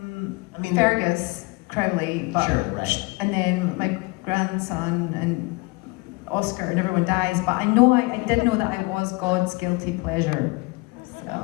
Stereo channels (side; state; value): right; quieter; 25.4 dB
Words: Fergus Crowley, but Sure, right. and then my grandson and Oscar and everyone dies. But I know I did know that I was God's guilty pleasure. So